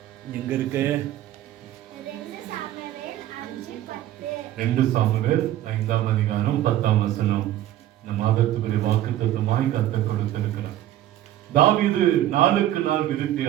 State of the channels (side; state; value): left; quieter; 13.1 dB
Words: எங்க இருக்கு? 2 சாமுவேல் 5ஆம் அதிகாரம் 10ஆம் வசனம். இந்த மாதத்துக்குரிய வாக்குத்தத்தமாய் கர்த்தர் கொடுத்திருக்கிறார். தாவீது நாளுக்கு நாள் விருத்தி